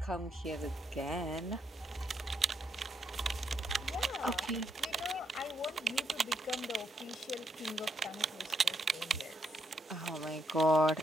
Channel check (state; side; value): normal; both; correlation 0.78